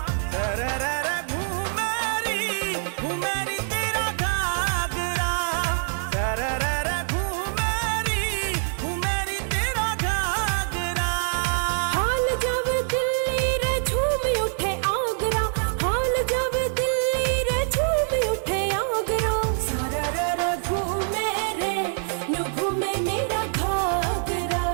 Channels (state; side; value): silent; left; 62 dB below the other